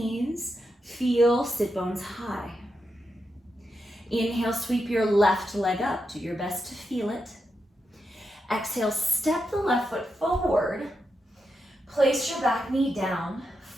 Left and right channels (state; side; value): normal; both; correlation 0.86